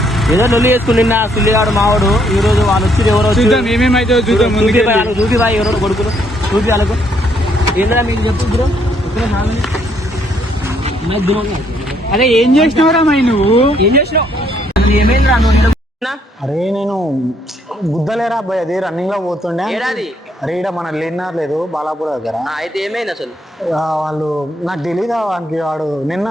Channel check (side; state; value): both; normal; correlation 0.70